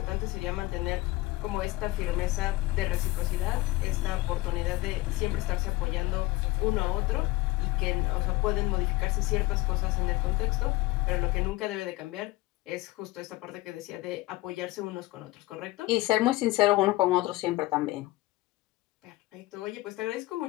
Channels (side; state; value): right; quieter; 19.3 dB